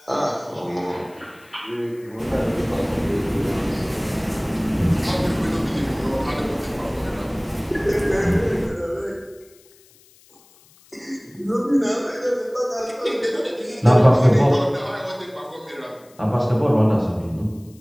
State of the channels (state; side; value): noise; left; hiss, 28 dB below the sound